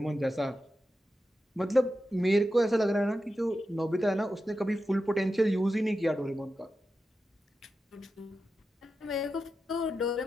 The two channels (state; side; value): normal; both; correlation 0.90